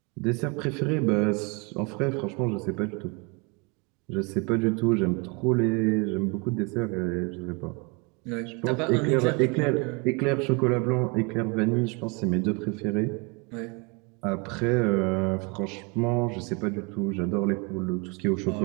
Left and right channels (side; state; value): left; quieter; 30.3 dB